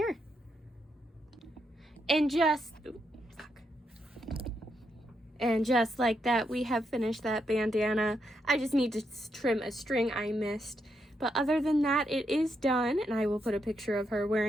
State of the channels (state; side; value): normal; both; correlation 0.81